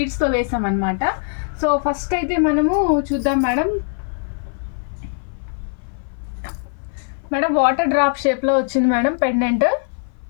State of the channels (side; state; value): right; silent; 58 dB below the other